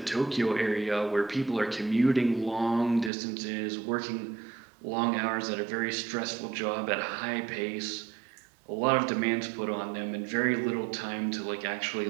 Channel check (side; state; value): left; drops out; at 3.1 s